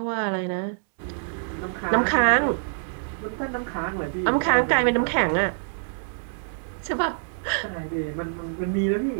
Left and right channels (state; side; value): silent; left; digital silence